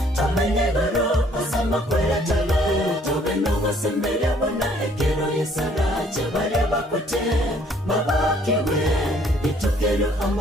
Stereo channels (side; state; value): both; normal; correlation 0.61